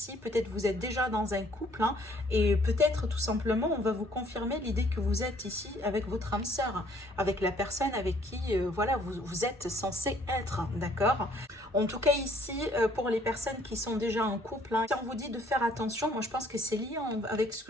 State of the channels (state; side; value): normal; both; correlation 0.62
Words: peut-être vous êtes déjà dans un couple, hein, et peut-être tout simplement, on va vous confirmer l'idée que vous êtes ici avec votre âme sœur, avec la personne avec qui, voilà, vous êtes censé être, d'accord? En tout cas ici, pour les personnes qui sont déjà en couple, hein, si on vous dit de faire attention, moi je pense que c'est lié avec ce